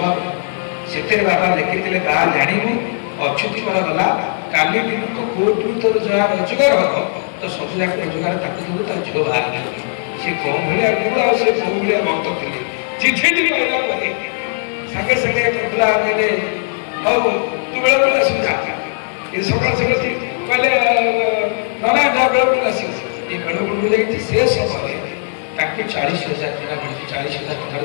ସେଥିରେ ବାବା ଲେଖିଥିଲେ ବାହା ଜାଣିବୁ ଅଚ୍ୟୁତିକର ଗଲା କାଲି ଦିନକୁ କୋର୍ଟରୁ ତୋର ଯାହା ରୋଜଗାର ହବ ତ ସବୁ ଯାକ ରୋଜଗାର ତାକୁ ଦେବୁ ତା ଝିଅ ବାହା ହେଇଯିବ ସେ କୋଉ ଭଳିଆ ଗୁରୁ ଆଉ ସେ କୋଉ ଭଳିଆ ଭକ୍ତ ଥିଲେ ଚିଠିଟି କହିଲା ପରେ ସାଙ୍ଗେ ସାଙ୍ଗେ ପ୍ରଫୁଲ୍ଲ କହିଲେ ହଉ ତୁ ବେଳେବେଳେ ଆସିବୁ ଯା ଏ ସକାଳ ସକାଳ କହିଲେ ନନା ଯା ବେଳେବେଳେ ଆସିବୁ ଏ ବେଳେବେଳେ ଯାଇକି ସେ ସମୟରେ ତାକୁ 40,000 ଟଙ୍କା ମିଳୁଛି 40,000 ଟଙ୍କାର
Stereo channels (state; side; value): silent; right; digital silence